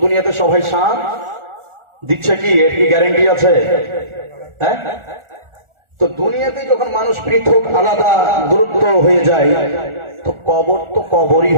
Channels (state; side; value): late; left; 1.4 ms